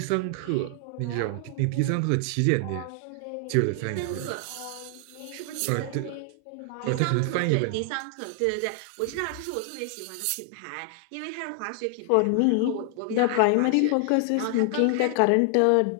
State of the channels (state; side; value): different; both; correlation 0.00